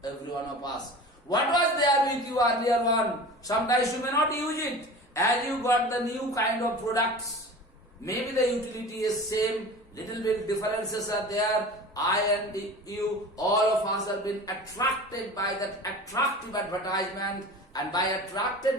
every one of us. What was there with you earlier one? Sometimes you may not use it, and you got the new kind of products. Maybe the utility is same, little bit differences are there. I and you, all of us have been attracted by that attractive advertisement, and by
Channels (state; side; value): normal; both; correlation 0.36